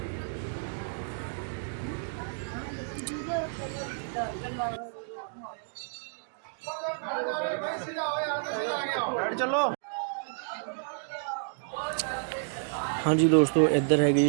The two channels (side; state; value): left; silent; digital silence